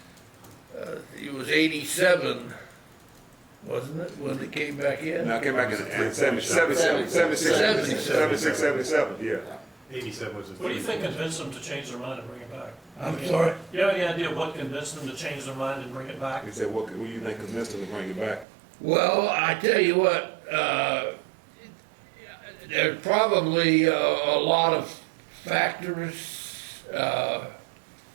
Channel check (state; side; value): drops out; left; at 18.4 s